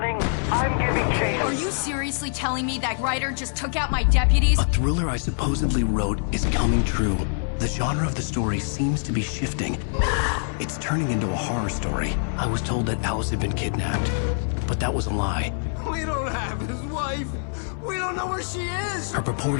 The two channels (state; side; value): silent; right; 62 dB below the other